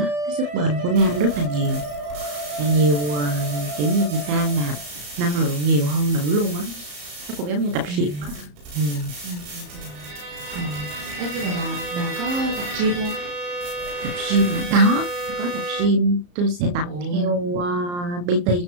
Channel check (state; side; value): late; left; 34 ms